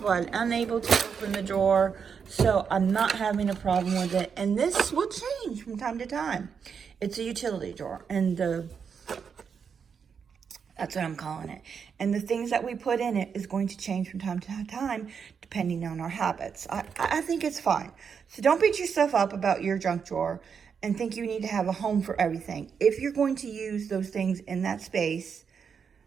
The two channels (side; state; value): left; quieter; 6.5 dB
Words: where I'm unable to open the drawer. So I'm not having a problem with it. And this will change from time to time. It's a utility drawer. And that's what I'm calling it. And the things that we put in it is going to change from time to time, depending on our habits. I think it's fine. So don't beat yourself up about your junk drawer and think you need to have a home for everything. If you're going to use those things in that space,